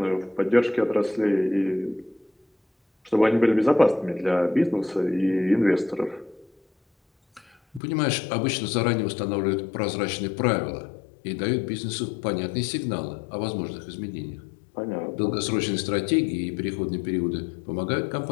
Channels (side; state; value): right; drops out; at 7.8 s